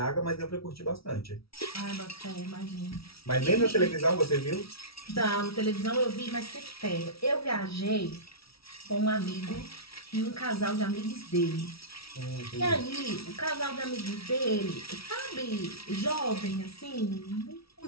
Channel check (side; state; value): right; late; 0.76 ms